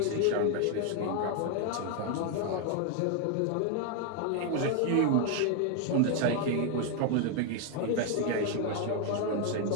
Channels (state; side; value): different; both; correlation 0.01